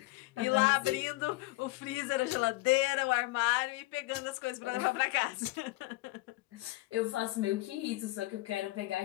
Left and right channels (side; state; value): right; quieter; 20.6 dB